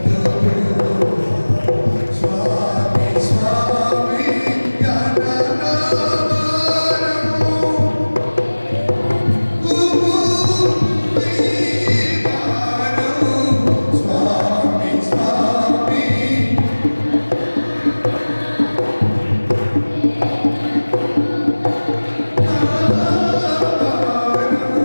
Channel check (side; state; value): both; inverted; correlation -1.00